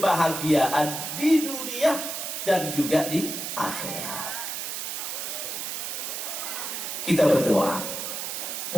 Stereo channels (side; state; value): right; noise; hiss, 4 dB below the sound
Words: di dunia dan juga di akhirat. Kita berdoa,